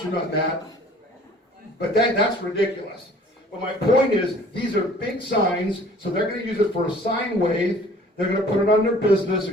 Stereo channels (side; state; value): both; normal; correlation 0.51